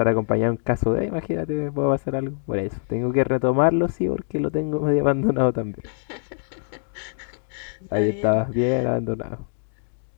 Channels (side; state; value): right; silent; 63 dB below the other